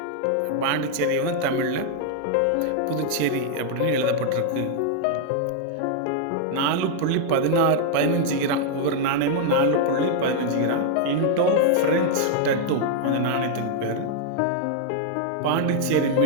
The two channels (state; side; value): different; both; correlation 0.00